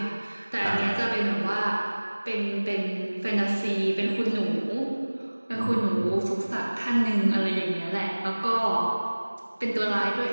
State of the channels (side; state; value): both; inverted; correlation -1.00